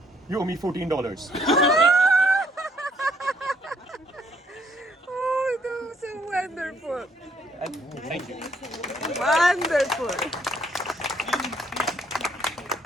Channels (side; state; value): both; normal; correlation 0.68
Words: you owe me $14. Oh, that was so wonderful. Thank you. Wonderful.